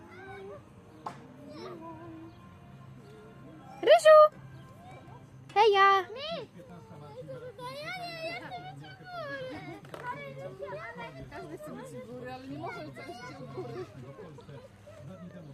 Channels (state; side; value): identical; both; correlation 1.00